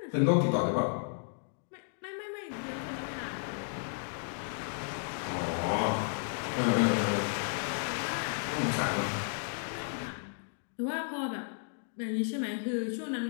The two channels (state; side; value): silent; right; digital silence